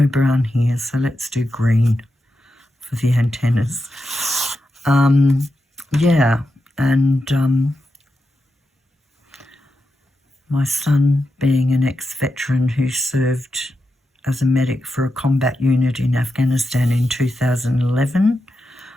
brown here, so let's do green for the antennas. Yeah, and my son, being an ex-veteran who served as a medic for a combat unit in Afghanistan in 2011,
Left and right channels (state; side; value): normal; both; correlation 0.88